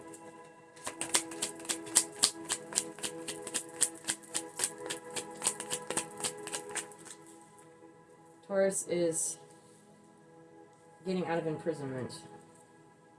Taurus is getting out of imprisonment,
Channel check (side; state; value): both; identical; correlation 1.00